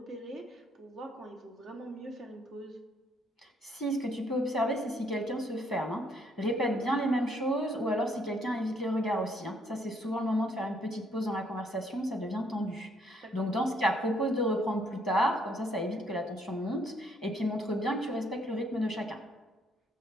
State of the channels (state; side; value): normal; both; correlation 0.68